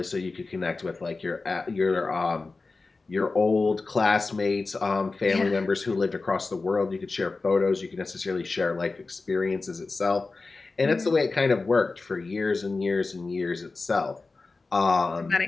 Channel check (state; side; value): quieter; right; 3.8 dB